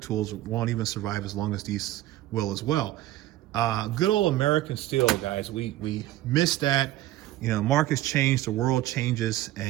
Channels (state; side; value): quieter; left; 15.3 dB